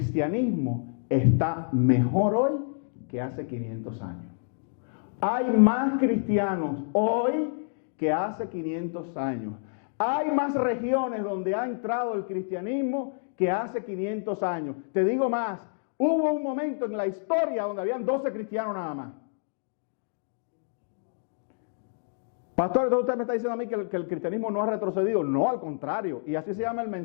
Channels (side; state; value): right; silent; digital silence